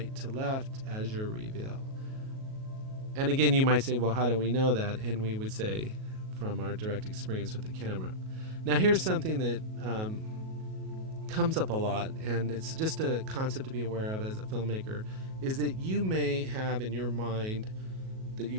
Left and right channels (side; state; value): left; late; 37 ms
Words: to left as your reveal. And again, you might say, well, how do we know that? And we would say, from our direct experience with the camera. Now here's something that comes up a lot, and it's just a concept to be aware of as a filmmaker, is that you may have in your mind that